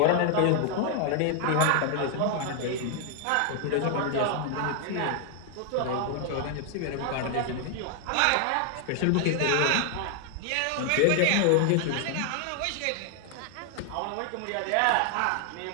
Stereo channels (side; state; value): both; different; correlation 0.00